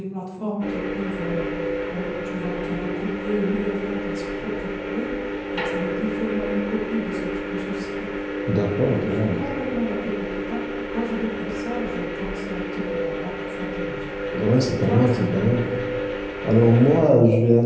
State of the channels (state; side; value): identical; both; correlation 1.00